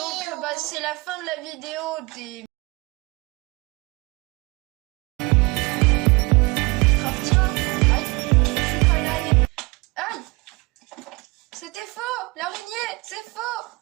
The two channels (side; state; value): left; quieter; 25.4 dB